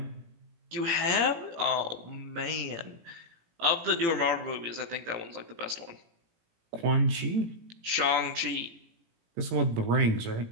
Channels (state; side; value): late; left; 18 ms